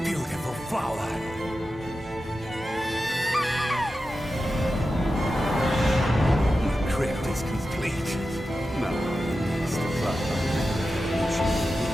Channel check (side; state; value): both; normal; correlation 0.92